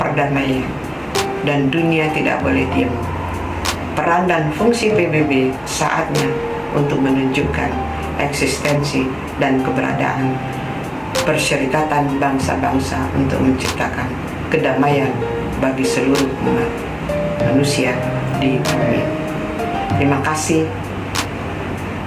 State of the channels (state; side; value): identical; both; correlation 1.00